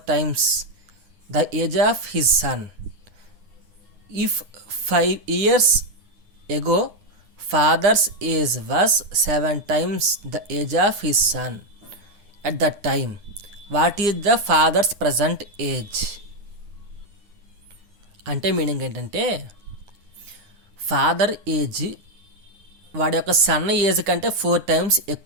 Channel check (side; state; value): left; late; 9.8 ms